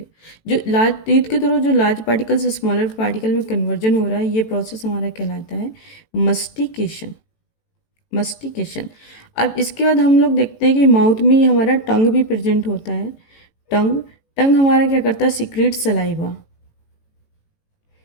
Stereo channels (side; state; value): right; late; 18 ms